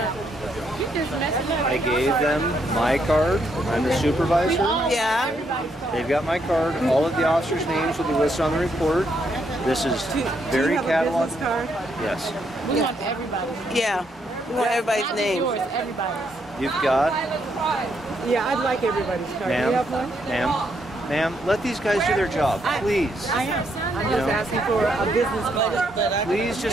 You just messing up. I gave them my card. I'm the supervisor. Yeah. They've got my card. All of the officers' names will be listed on the report. This is very cataloged. Yes. We want everybody. Yeah. We want everybody's Not name. yours, everybody's. You've got, Yeah, I'd like everybody's card. Do you have one? ma'am, let these guys do their job, please. I am. I'm just asking for a business card. Please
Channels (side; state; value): both; normal; correlation 0.75